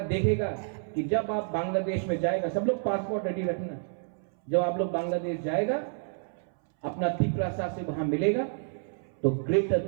देखेगा कि जब आप बांग्लादेश में जाएगा, सब लोग पासपोर्ट रेडी रखना, जब आप लोग बांग्लादेश जाएगा अपना तिप्रासा से वहां मिलेगा तो ग्रेटर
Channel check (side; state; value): left; silent; 58 dB below the other